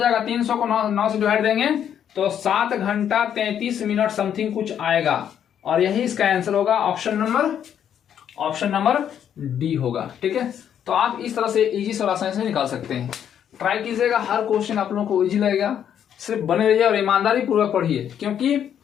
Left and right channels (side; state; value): right; quieter; 9.2 dB